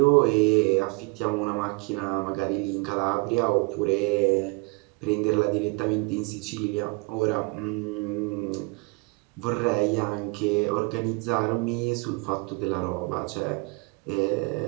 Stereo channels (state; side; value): quieter; left; 29.0 dB